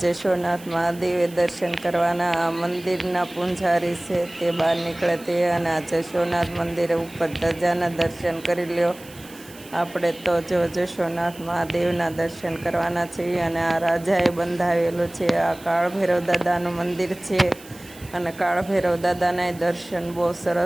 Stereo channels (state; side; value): noise; right; hiss, 21 dB below the sound